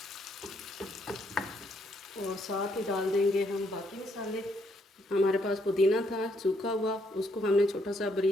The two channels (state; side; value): normal; both; correlation 0.73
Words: और साथ ही डाल देंगे हम बाकी मसाले। हमारे पास पुदीना था सूखा हुआ, उसको हमने छोटा सा